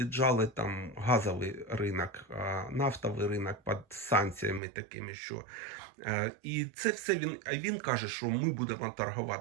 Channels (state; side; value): drops out; left; at 4.6 s